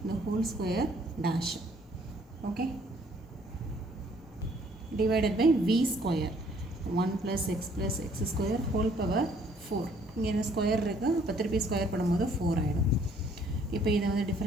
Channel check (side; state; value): both; normal; correlation 0.62